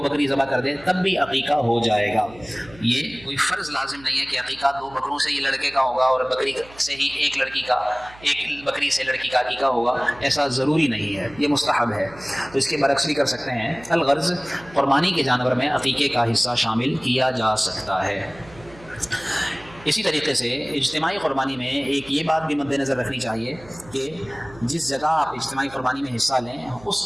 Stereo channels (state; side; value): noise; right; hum, 22 dB below the sound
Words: بکری ذبح کر دے، تب بھی عقیقہ ہو جائے گا۔ یہ کوئی فرض لازم نہیں ہے کہ عقیقہ 2 بکروں سے ہی لڑکے کا ہوگا اور بکری سے ہی 1 لڑکی کا، 1 بکری سے لڑکی کا عقیقہ ہوگا، ایسا ضروری نہیں ہے، یہ مستحب ہے۔ تو اس کے برعکس بھی کر سکتے ہیں۔ الغرض قربانی کے جانور میں عقیقے کا حصہ شامل کیا جا سکتا ہے۔ اسی طریقے سے اجتماعی قربانی میں ایک یہ بات بھی مد نظر رکھنی چاہیے کہ جس جگہ آپ اجتماعی قربانی میں حصہ لیں